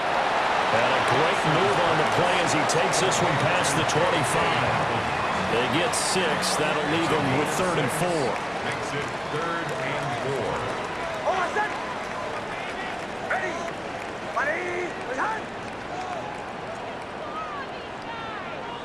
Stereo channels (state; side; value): identical; both; correlation 1.00